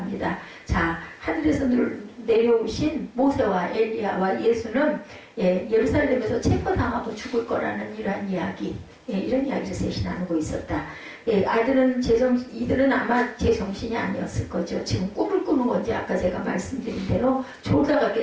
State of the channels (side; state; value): both; identical; correlation 1.00